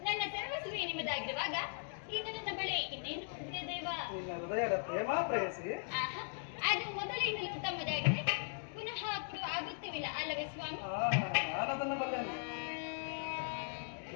ನನ್ನ ಸರ್ವಸ್ವೇ ನಿಮ್ಮದಾಗಿರುವಾಗ ಈಗ ನನ್ನ ಬಳಿ ಇನ್ನೇನು ಹೊಂದಿದೆ ದೇವ? ನಿನ್ನ ಹೃದಯದ ಪ್ರೇಮ ಪ್ರೇಯಸಿ. ಅದು ಮೊದಲಿಂದಲೂ ತಮ್ಮದಾಗಿದೆ, ಪುನಃ ಕೊಡು ಆಗುತ್ತಿವಿಲ್ಲ ಅಲ್ಲವೇ ಸ್ವಾಮಿ? ನಾನದನ್ನು ಬಲ್ಲೆನು.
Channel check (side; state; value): right; silent; digital silence